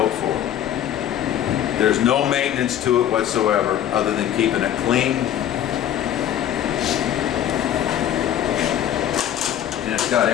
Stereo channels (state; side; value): quieter; right; 10.8 dB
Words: for. There's no maintenance to it whatsoever other than keeping it clean. And it's got